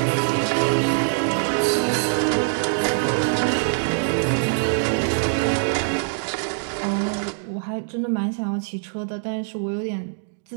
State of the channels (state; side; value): silent; left; digital silence